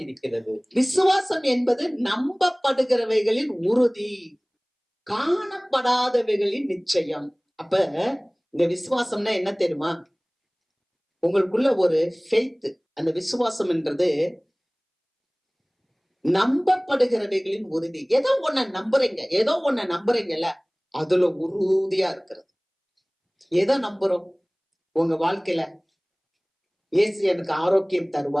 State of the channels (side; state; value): both; identical; correlation 1.00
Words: இருக்கிறது. விசுவாசம் என்பது நம்பப்படுகிறவைகளின் உறுதி, காணப்படாதவைகளின் நிச்சயம். அப்ப இந்த விசுவாசம்னா என்ன தெரியுமா? உங்களுக்குள்ள ஒரு ஃபெய்த். அந்த விசுவாசம் என்றது நம்பப்படுகிறவைகளின் உறுதி. ஏதோ ஒன்ன நம்புறீங்கல்ல, அதுல உறுதியா இருக்கிறது. எதை நம்புறோம்? உங்க வாழ்க்கையில இயேசு எனக்கு ஆரோக்கியம்